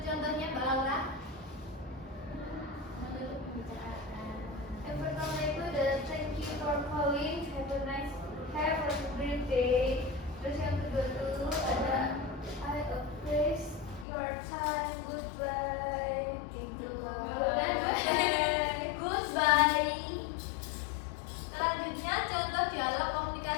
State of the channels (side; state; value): right; drops out; at 14.1 s